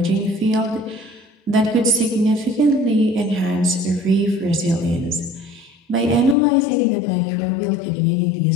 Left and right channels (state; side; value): drops out; right; at 6.4 s